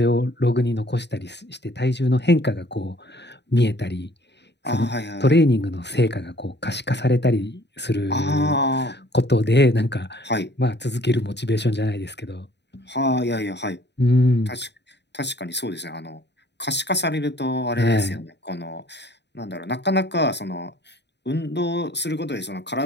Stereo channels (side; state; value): right; late; 0.50 ms